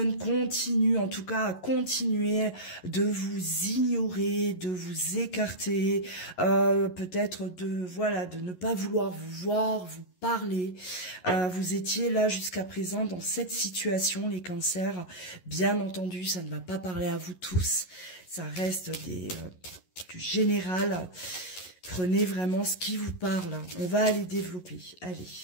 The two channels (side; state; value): right; late; 11 ms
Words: continue, en tout cas, à continuer de vous ignorer, de vous écarter, peut-être de ne pas vouloir vous voir, vous parler. Vous étiez là jusqu'à présent dans cette situation, les cancers. Bien entendu, ça ne va pas parler à vous tous. Ça reste du général. Prenez vraiment ce qui vous parle. On va aller développer. Allez,